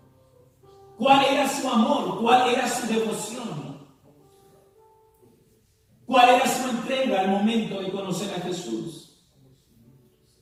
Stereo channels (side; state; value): both; identical; correlation 1.00